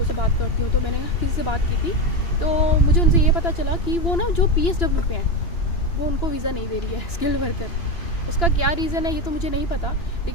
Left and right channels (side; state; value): right; late; 2.9 ms